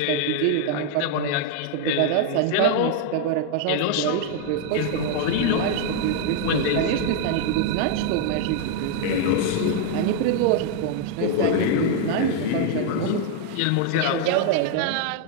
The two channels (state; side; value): different; both; correlation 0.00